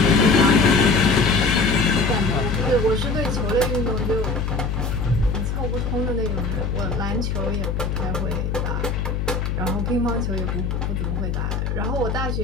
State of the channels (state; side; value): noise; left; hum, 1 dB below the sound